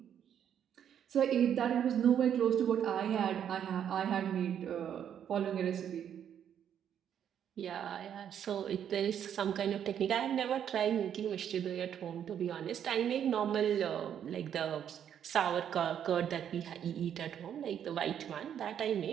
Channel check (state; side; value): quieter; left; 9.1 dB